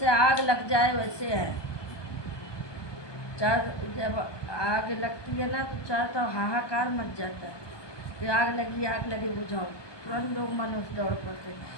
आग लग जाए वैसे है। जब आग लगती है ना तो चार तो हाहाकार मच जाता है कि आग लगी बुझाओ, तुरंत लोग मनुष्य दौड़ पड़ते।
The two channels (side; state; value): right; late; 1.2 ms